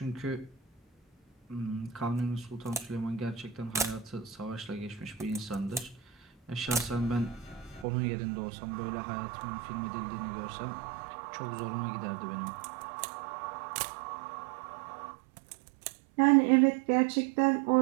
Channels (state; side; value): drops out; left; at 7.9 s